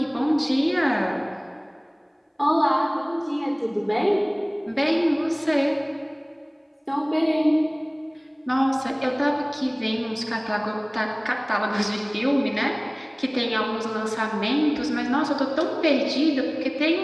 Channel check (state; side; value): identical; both; correlation 1.00